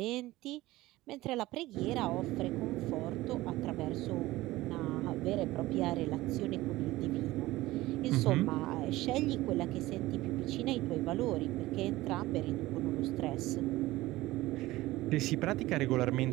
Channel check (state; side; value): quieter; left; 17.9 dB